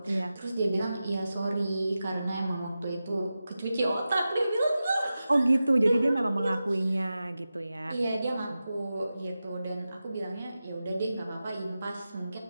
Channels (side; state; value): both; inverted; correlation -0.93